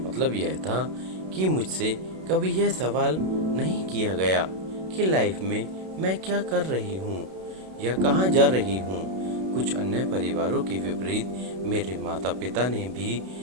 यह था कि मुझसे कभी यह सवाल नहीं किया गया कि लाइफ में मैं क्या कर रही हूँ या कहाँ जा रही हूँ। कुछ अन्य परिवारों के विपरीत मेरे माता पिता ने भी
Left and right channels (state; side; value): late; left; 32 ms